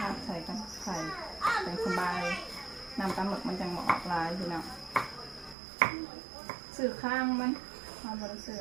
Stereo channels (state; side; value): drops out; left; at 5.6 s